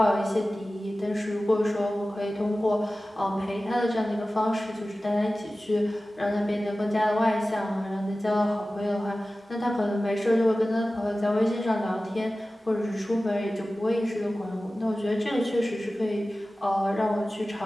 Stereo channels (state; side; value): normal; both; correlation 0.96